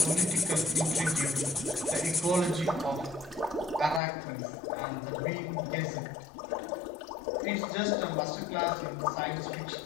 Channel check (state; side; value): drops out; right; at 4.0 s